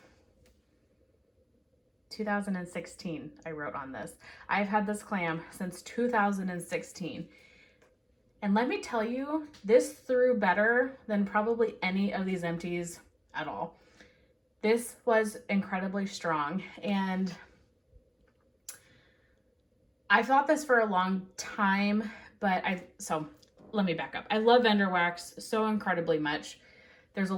2016, I wrote on this. I've had this clam since 2016. And let me tell you, this threw better than probably any of these empties at all. This was incredibly strong, and I thought this for a long time, but so let me back up. I love vendor wax so incredibly much. There's a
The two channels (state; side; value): identical; both; correlation 1.00